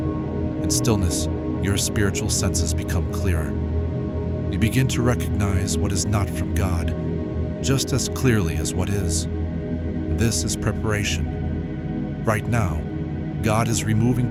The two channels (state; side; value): identical; both; correlation 1.00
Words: In stillness, your spiritual senses become clearer. You begin to recognize what is not from God just as clearly as what is. This is preparation. Right now, God is removing